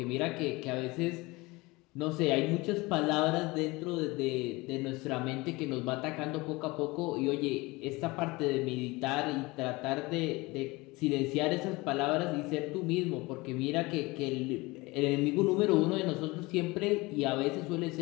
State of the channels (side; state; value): right; quieter; 22.9 dB